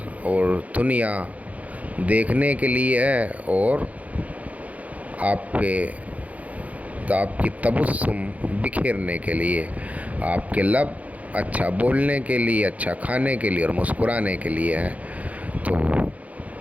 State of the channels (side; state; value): left; late; 0.070 ms